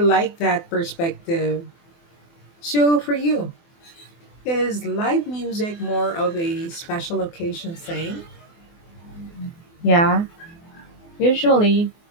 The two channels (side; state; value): right; late; 24 ms